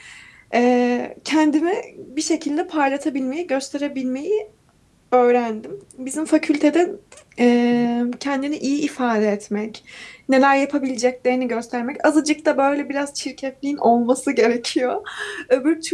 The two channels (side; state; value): both; identical; correlation 1.00